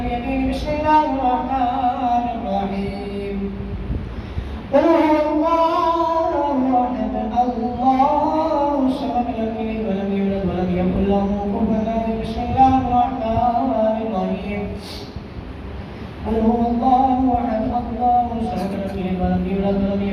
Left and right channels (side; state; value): both; identical; correlation 1.00